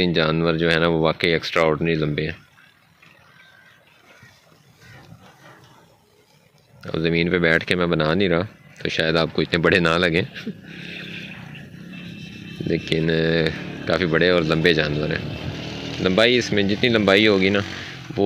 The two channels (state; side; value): identical; both; correlation 1.00